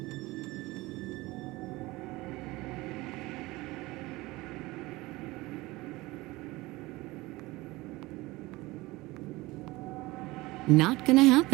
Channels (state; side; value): quieter; left; 20.7 dB